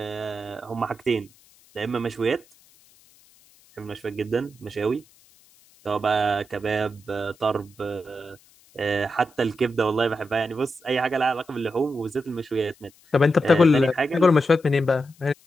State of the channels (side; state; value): left; noise; hiss, 29 dB below the sound